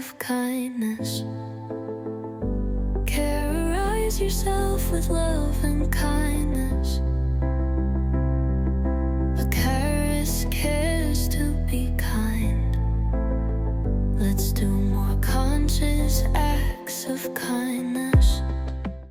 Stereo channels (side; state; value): both; identical; correlation 1.00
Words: kindness. Carrorize yourself with love and kindness. A carrorist cares to be kind. Let's do more conscious acts of kindness.